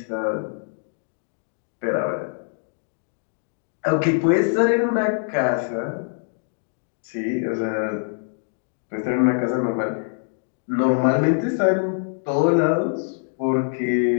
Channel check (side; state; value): right; silent; digital silence